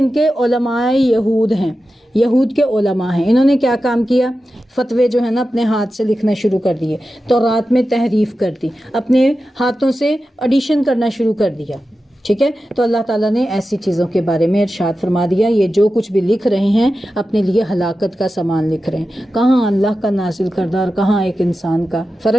کے علماء یہود ہیں، یہود کے علماء ہیں. انہوں نے کیا کام کیا؟ فتوے جو ہے نا اپنے ہاتھ سے لکھنا شروع کر دیے، تورات میں تحریف کر دی، اپنے ہاتھوں سے ایڈیشن کرنا شروع کر دیا. ٹھیک ہے. تو اللہ تعالیٰ نے ایسی چیزوں کے بارے میں ارشاد فرما دیا یہ جو کچھ بھی لکھ رہے ہیں اپنے لیے ہلاکت کا سامان لکھ رہے ہیں. کہاں اللہ کا نازل کردہ اور کہاں ایک انسان کا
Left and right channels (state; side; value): normal; both; correlation 0.92